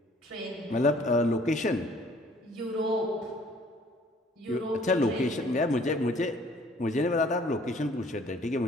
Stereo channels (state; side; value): normal; both; correlation 0.57